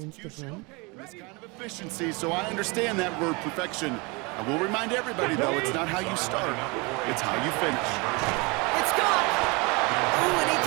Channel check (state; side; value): quieter; left; 27.9 dB